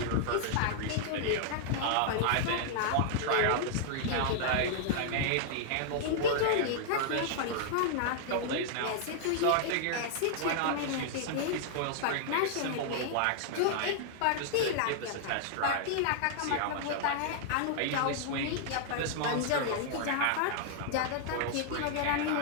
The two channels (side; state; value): both; different; correlation -0.01